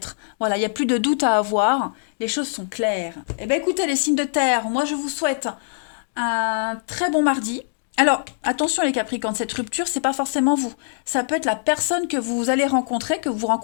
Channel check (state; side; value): silent; right; digital silence